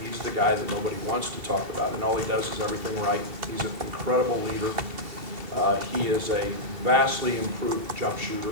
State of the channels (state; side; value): late; left; 2.7 ms